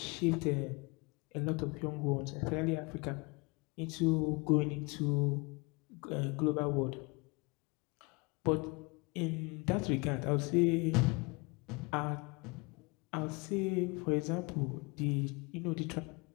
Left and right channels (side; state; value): right; quieter; 28.7 dB